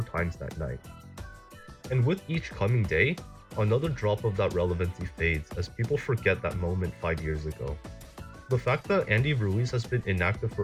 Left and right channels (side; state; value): both; identical; correlation 1.00